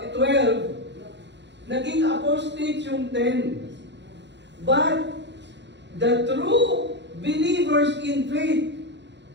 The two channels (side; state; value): left; late; 0.52 ms